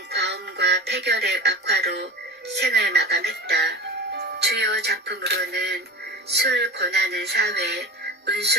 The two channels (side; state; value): both; normal; correlation 0.31